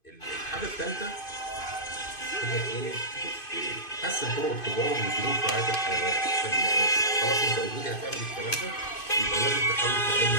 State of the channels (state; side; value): late; right; 2.5 ms